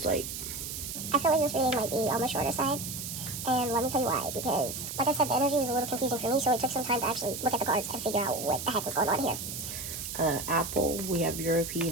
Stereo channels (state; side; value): noise; right; hiss, 7 dB below the sound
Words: like. I feel like this reading might be on the shorter side. And let me tell you why, because, like I said, the energy was a little confusing for me, so it took some time to actually look at the cards and figure out what the heck was going on here. Apple, we have